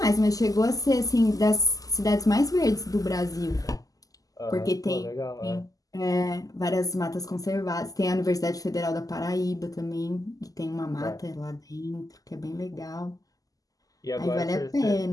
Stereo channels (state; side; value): late; right; 0.17 ms